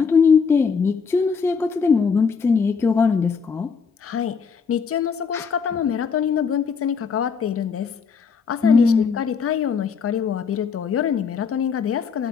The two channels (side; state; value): right; quieter; 5.8 dB